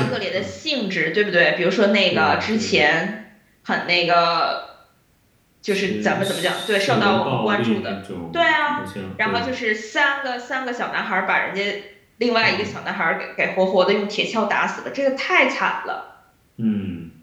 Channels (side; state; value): both; identical; correlation 1.00